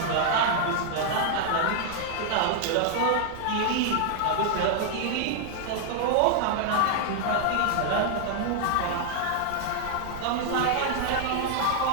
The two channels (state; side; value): different; both; correlation 0.00